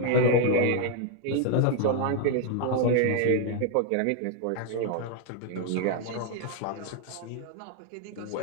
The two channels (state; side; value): different; both; correlation 0.00